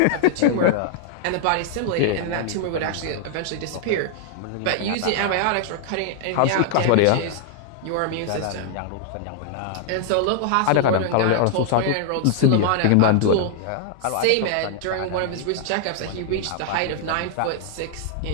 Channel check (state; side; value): different; both; correlation 0.00